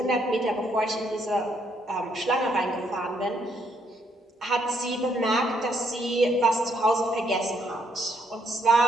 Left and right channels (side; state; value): both; normal; correlation 0.72